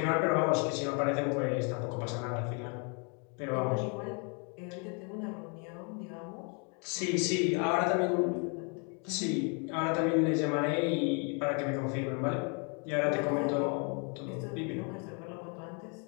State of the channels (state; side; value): quieter; right; 36.3 dB